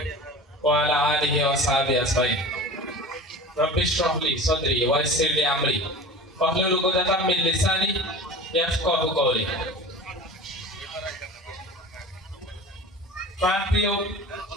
ওয়া আলা আলিহি ওয়া সাহবিহি আজমাইন। রব্বি ইশরাহ লি সাদরি ওয়া ইয়াসসির লি আমরি ওয়াহলুল উকদাতাম মিন লিসানি ইয়াফকাহু কওলি। প্রাণপ্রিয়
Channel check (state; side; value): normal; both; correlation 0.37